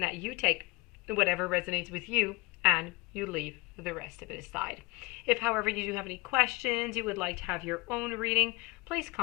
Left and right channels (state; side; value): quieter; right; 23.9 dB